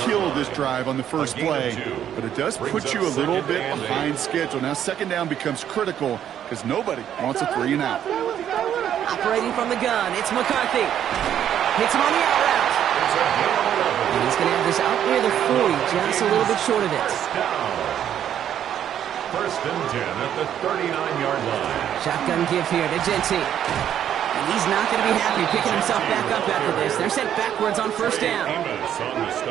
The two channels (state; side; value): quieter; left; 10.0 dB